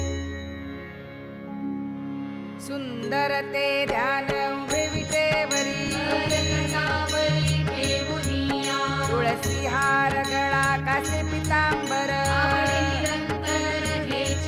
सुंदर ते ध्यान उभे विटेवरी कटावरी ठेवुनिया तुळसी हार गळा कासे पितांबर आवडे निरंतर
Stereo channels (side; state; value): both; identical; correlation 1.00